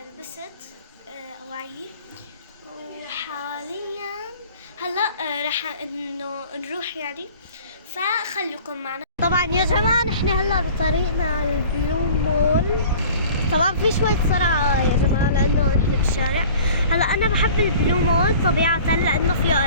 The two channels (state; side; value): inverted; both; correlation -0.45